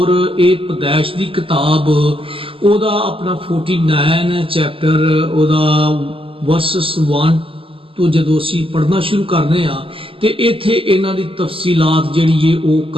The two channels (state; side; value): late; left; 0.26 ms